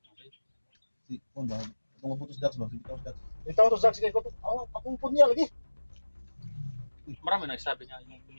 Si Kwanda, itong mabutos dax ba? Si Bitaw dax. Ito to Zack, sige ko. Akong punya lagi. Marami nagsabi niya yung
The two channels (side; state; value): both; inverted; correlation -1.00